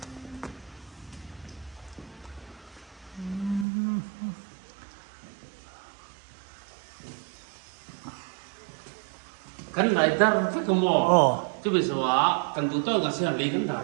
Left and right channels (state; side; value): drops out; left; at 3.7 s